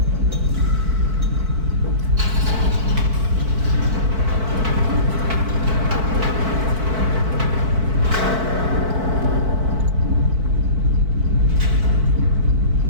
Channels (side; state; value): left; late; 4.5 ms